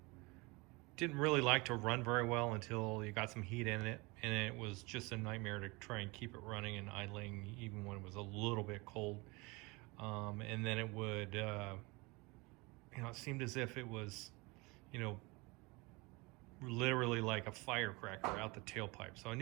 Didn't really like to run very well until you got some heat in it, and it was just a nightmare to try and keep it running and idling even when it was a little bit cold. And then it would, it seemed as if it was, literally like a firecracker out the tailpipe. So I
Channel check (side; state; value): left; quieter; 25.7 dB